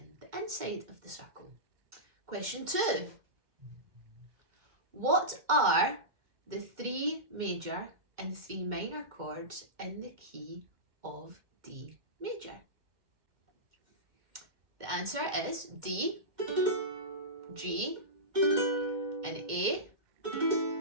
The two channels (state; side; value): late; left; 2.1 ms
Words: the inside of the circle. Question 2. What are the 3 major and 3 minor chords in the key of D major? The answer is D, G, and A